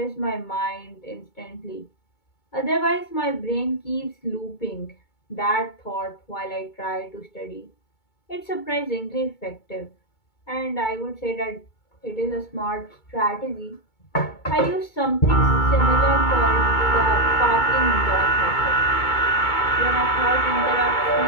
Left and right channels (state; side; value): late; right; 2.2 ms